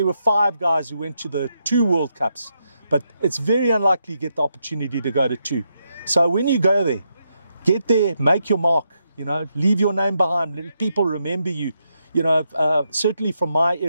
were 5 guys who went to the 2 World Cups, but it's very unlikely you get the opportunity to go to 2. So when you go there, get there, make your mark, you know, leave your name behind, let people remember you. You know, certainly from my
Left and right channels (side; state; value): both; inverted; correlation -0.81